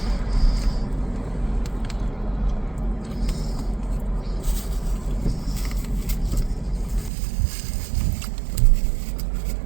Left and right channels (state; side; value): drops out; left; at 7.1 s